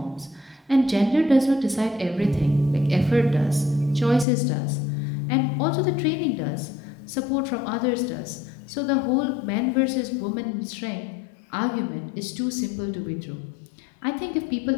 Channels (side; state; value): right; drops out; at 4.2 s